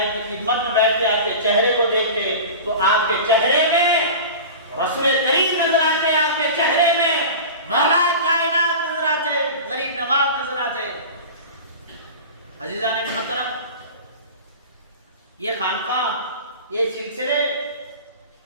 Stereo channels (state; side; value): inverted; both; correlation -0.33